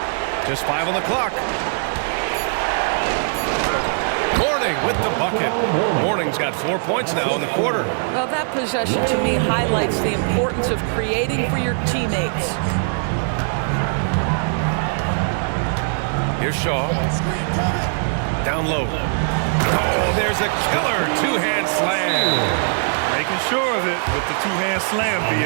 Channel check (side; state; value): left; silent; digital silence